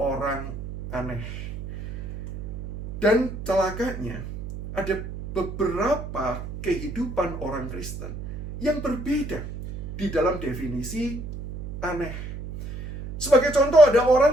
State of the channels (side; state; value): right; noise; hum, 9 dB below the sound